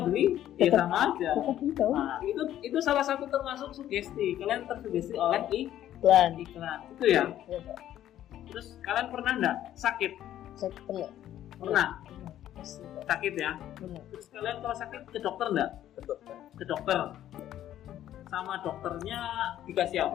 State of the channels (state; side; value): quieter; right; 12.1 dB